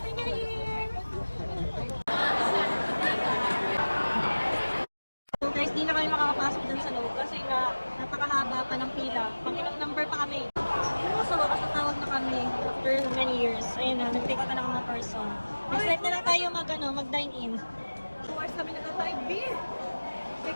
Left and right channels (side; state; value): both; inverted; correlation -1.00